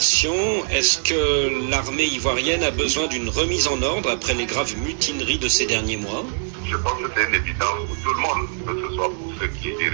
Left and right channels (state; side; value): silent; left; 64 dB below the other